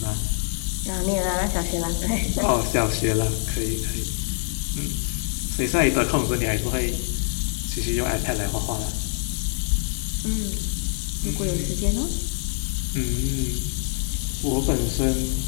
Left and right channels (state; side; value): silent; right; 56 dB below the other